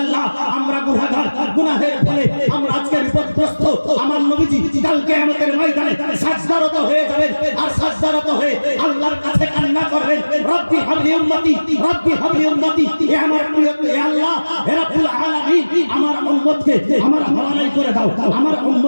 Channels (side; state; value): both; inverted; correlation -1.00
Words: আমরা গুনাহগার, গুনাহের ফলে আমরা আজকে বিপদগ্রস্ত। আমার নবীজি কাল কিয়ামতের ময়দানে সাজদারত হয়ে যাবেন, আর সাজদারত হয়ে আল্লাহর কাছে কান্না করবেন, রব্বি হাবলি উম্মতি, রব্বি হাবলি উম্মতি, হে আমার প্রিয়, হে আল্লাহ, হে রাব্বুল আলামিন, আমার উম্মতকে আমার হাওয়ালাই করে দাও, আমার